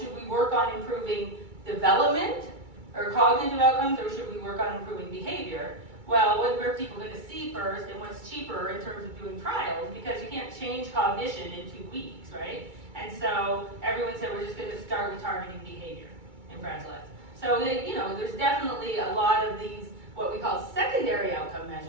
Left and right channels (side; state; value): left; late; 2.3 ms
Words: we work on improving development or cognitive outcomes, or should we work on improving behavior? Well, what were people going to see first, and what's cheaper in terms of doing trials? Because you can't change cognition in 2 weeks, right? And so everyone said we're just going to start with targeting behavior in Fragile X. So there's definitely a lot of these what we call secondary outcome